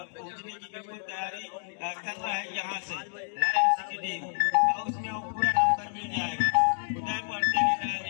की बिल्कुल तैयारी कर रहा है यहाँ से लायंस की टीम उसमें पूरा नंबर मिल जाएगा। उदय पड़ते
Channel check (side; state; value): right; silent; 57 dB below the other